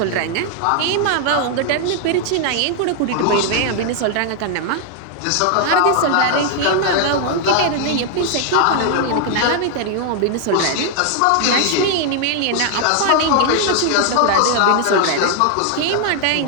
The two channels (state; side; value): different; both; correlation 0.00